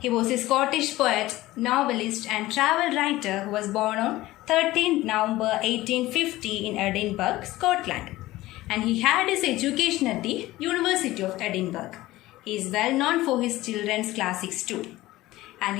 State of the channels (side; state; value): right; quieter; 17.4 dB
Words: was a Scottish poet, novelist and travel writer who was born on 13th November 1850 in Edinburgh, Scotland. And he had his education at the University of Edinburgh. He is well known for his children's classics too. And